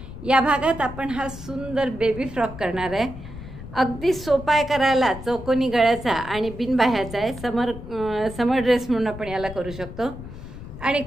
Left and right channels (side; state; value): left; noise; rumble, 13 dB below the sound